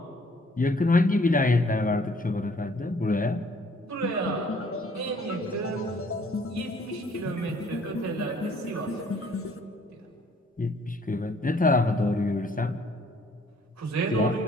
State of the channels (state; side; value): normal; both; correlation 0.60